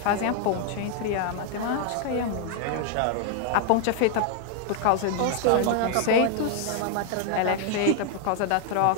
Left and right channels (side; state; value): both; different; correlation 0.00